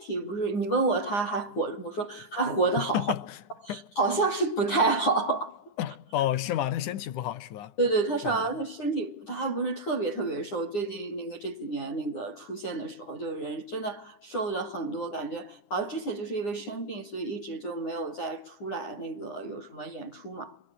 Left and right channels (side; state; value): right; late; 9.7 ms